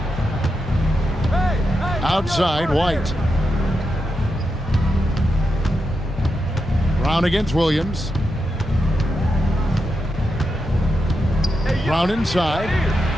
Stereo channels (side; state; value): both; normal; correlation 0.87